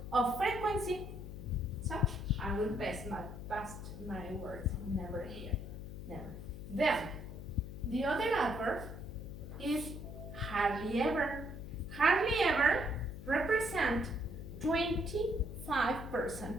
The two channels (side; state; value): left; noise; hum, 10 dB below the sound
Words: of frequency. So, I will pass my words never here. Never. Then, the other adverb is hardly ever. Hardly ever represent